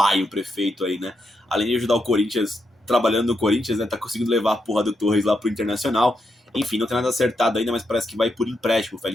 um prefeito aí, né? Além de ajudar o Corinthians, trabalhando no Corinthians, né? Tá conseguindo levar a porra do Torres lá pro Internacional. Enfim, não tem nada acertado ainda, mas parece que vai por empréstimo o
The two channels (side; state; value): both; normal; correlation 0.82